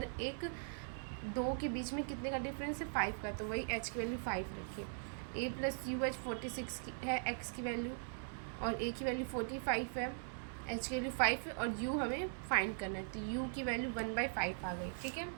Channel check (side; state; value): left; silent; digital silence